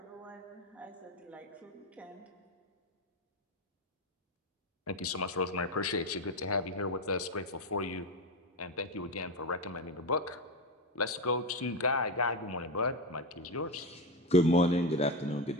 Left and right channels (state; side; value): normal; both; correlation 0.15